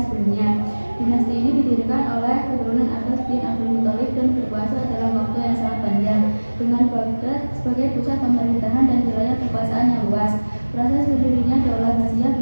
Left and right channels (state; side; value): inverted; both; correlation -1.00